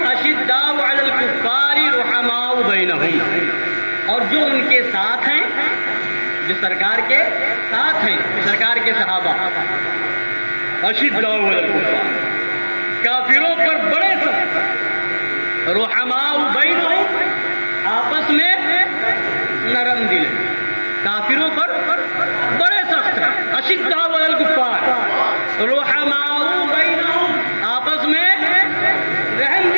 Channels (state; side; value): inverted; both; correlation -1.00